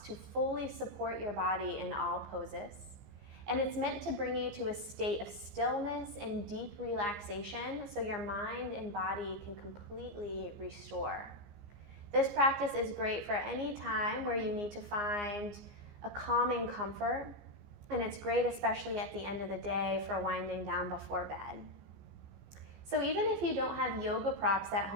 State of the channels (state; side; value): late; left; 15 ms